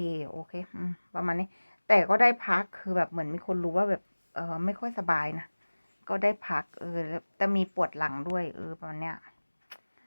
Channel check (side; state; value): both; inverted; correlation -1.00